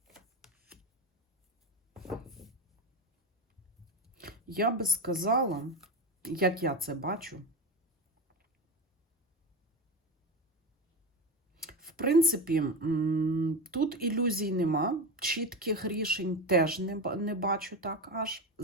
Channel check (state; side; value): normal; both; correlation 0.19